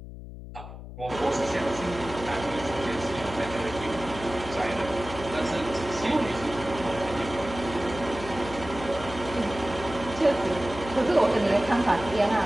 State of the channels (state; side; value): noise; left; hum, 12 dB below the sound